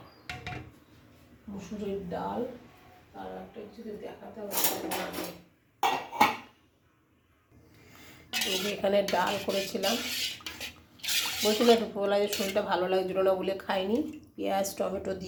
মুসুরির ডাল। আর একটা যদি দেখাতে হবে, এখানে ডাল করেছিলাম। বলছিলাম দুপুরবেলা যে শরীরটা ভালো লাগছিল না বলে খাইনি। পেঁয়াজ টমেটো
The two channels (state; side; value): identical; both; correlation 1.00